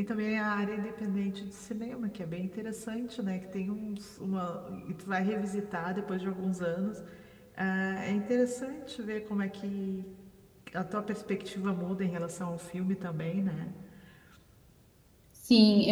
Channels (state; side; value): identical; both; correlation 1.00